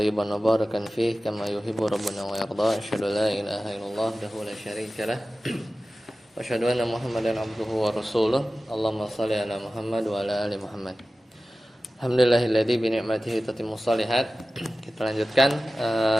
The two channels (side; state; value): both; normal; correlation 0.96